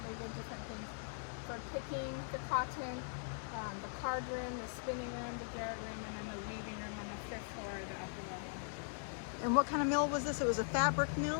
they did different things. For picking the cotton, the card room, the spinning room, the garret room, and then the weaving room on the 5th floor, the upper level. And what kind of mill was this? It was a fabric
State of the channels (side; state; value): right; silent; digital silence